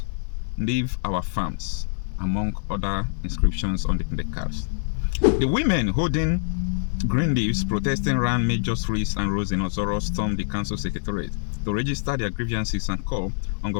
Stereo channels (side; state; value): right; silent; digital silence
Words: Leave our farms," among other inscriptions on the placards. The women holding green leaves protesting around major streets and roads in Ozoro stormed the council secretariat to register their grievances and call on